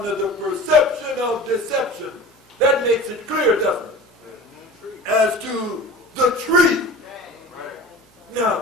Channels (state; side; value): normal; both; correlation 0.38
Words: the perception of deception. That makes it clear, doesn't it? As to the tree. Right.